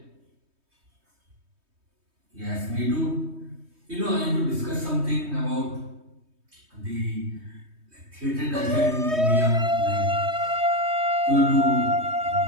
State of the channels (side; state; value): left; late; 3.2 ms